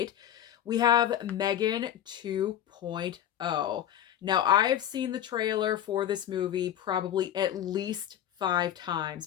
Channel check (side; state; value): right; quieter; 10.9 dB